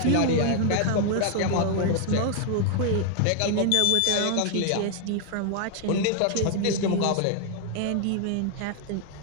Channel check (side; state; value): both; different; correlation 0.00